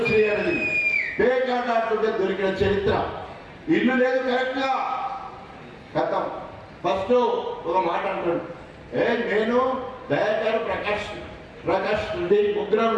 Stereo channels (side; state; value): both; identical; correlation 1.00